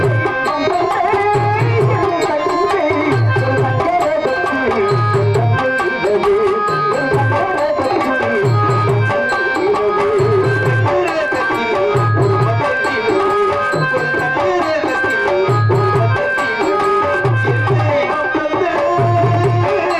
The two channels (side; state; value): both; identical; correlation 1.00